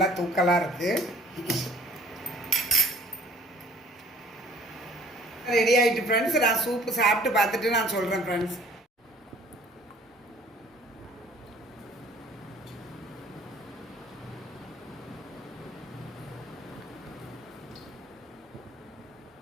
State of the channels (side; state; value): both; normal; correlation 0.54